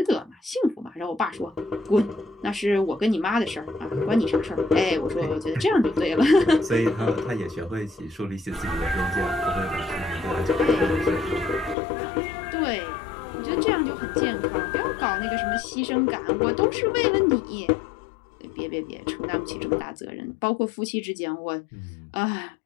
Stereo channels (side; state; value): right; drops out; at 11.8 s